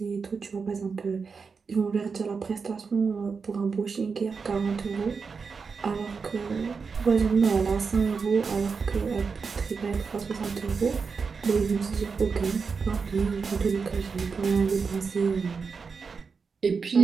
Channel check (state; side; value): quieter; left; 5.2 dB